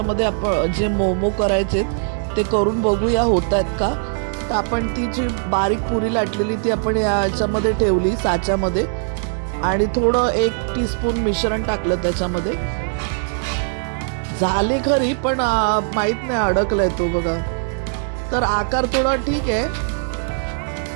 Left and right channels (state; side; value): silent; left; digital silence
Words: आपण जे मोमो करायचे ते करून बघूया होत आहेत का. तर आपण ती जी बारीक पुरी लाटलेली ती आपण याच्यामध्ये ठेवली साच्यामध्ये आणि थोडं 1 टीस्पून मिश्रण टाकलं त्याच्यामध्ये. झाली खरी पण माहीत नाही अडकलाय तो बघा. तर आकार थोडा ठीक आहे,